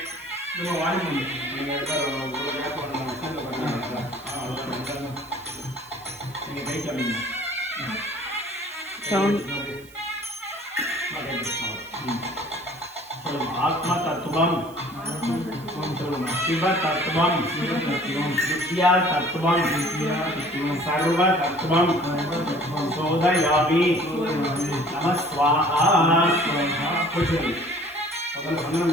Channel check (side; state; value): right; noise; hiss, 23 dB below the sound